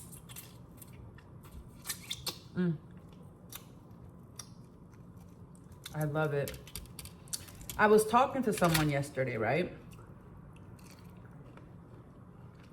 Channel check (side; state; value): both; identical; correlation 1.00